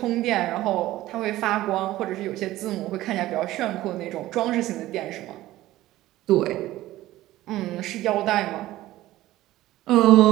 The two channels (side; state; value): left; quieter; 15.9 dB